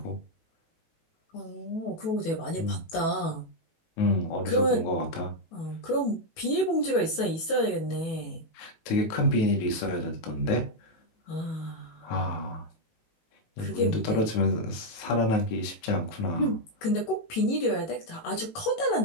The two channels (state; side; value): late; right; 18 ms